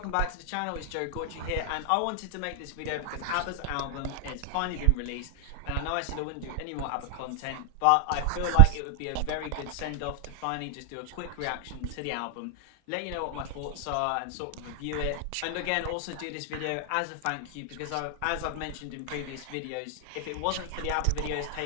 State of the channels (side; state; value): both; different; correlation 0.00